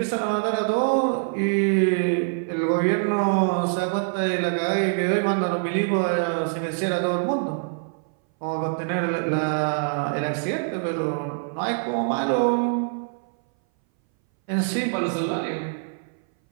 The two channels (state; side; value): silent; left; 60 dB below the other